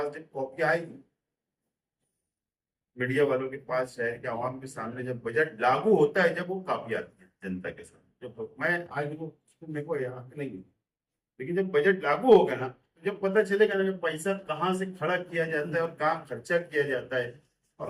जब कॉपी आएगी मीडिया वालों के पास, शहर के आवाम के सामने जब बजट लागू होता है, जब वो कॉपी आती है जनता के सामने, जब मैं आज वो मेरे को याद नहीं है, लेकिन जब बजट लागू होगा ना, जब पता चलेगा ना पैसा कहाँ से खड़ा किया जाता है और कहाँ खर्चा किया जाता है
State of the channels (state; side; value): identical; both; correlation 1.00